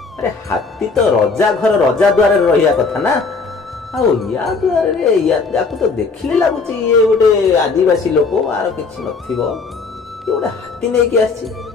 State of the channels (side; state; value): right; quieter; 4.4 dB